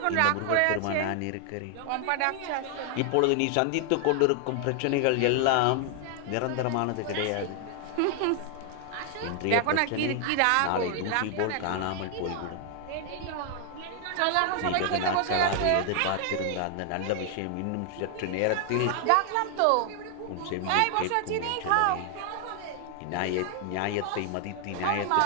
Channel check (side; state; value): both; different; correlation 0.00